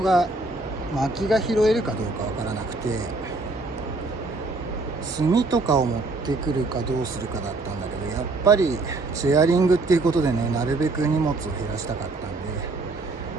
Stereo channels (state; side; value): quieter; left; 3.3 dB